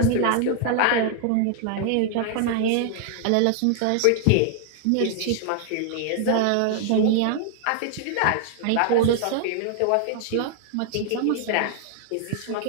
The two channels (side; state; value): both; different; correlation -0.01